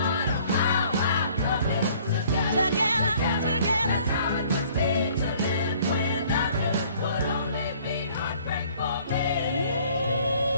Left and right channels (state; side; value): inverted; both; correlation -0.56